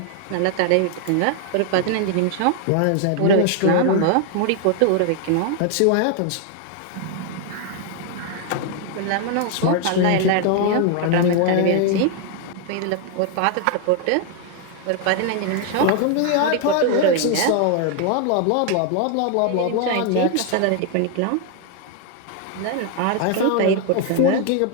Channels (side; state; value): both; different; correlation 0.00